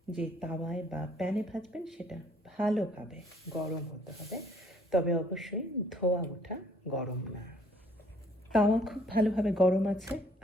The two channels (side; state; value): both; normal; correlation 0.61